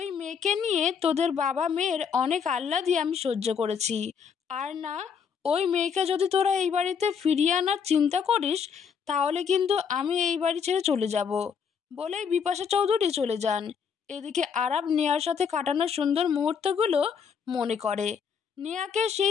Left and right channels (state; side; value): quieter; right; 6.8 dB